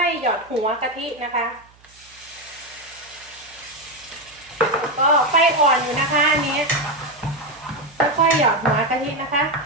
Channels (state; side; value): noise; right; hum, 29 dB below the sound